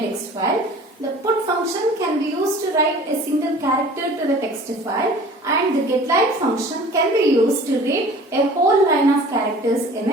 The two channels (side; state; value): both; normal; correlation 0.45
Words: file. The put function can be used to write a single character to the text file, and the getLine function can be used to read a whole line of characters in